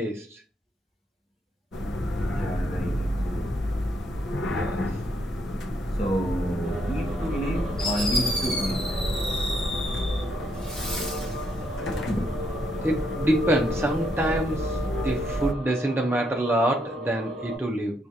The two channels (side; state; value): both; normal; correlation 0.75